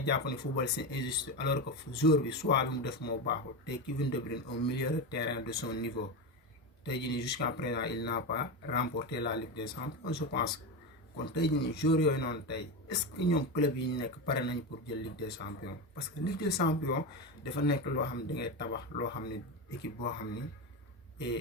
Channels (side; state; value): both; normal; correlation 0.16